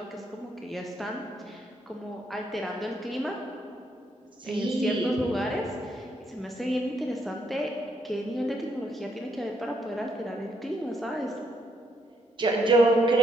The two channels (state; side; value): normal; both; correlation 0.74